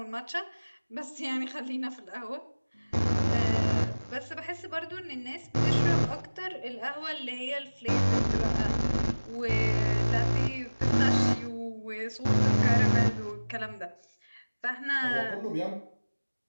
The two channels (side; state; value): both; inverted; correlation -1.00